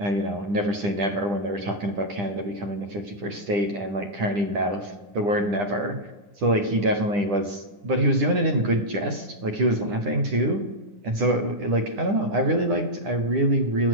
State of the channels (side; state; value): left; late; 9.9 ms